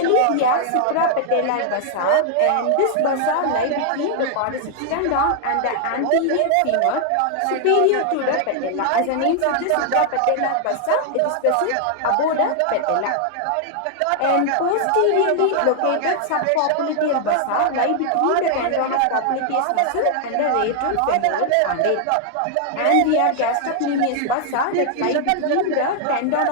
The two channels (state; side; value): different; both; correlation 0.00